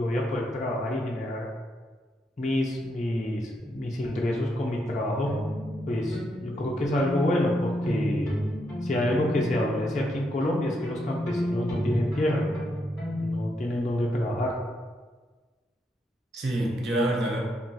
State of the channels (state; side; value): normal; both; correlation 0.79